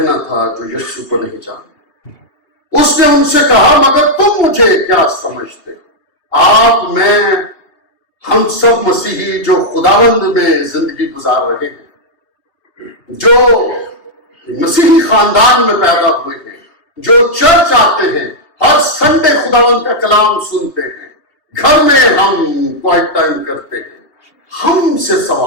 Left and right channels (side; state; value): right; late; 2.8 ms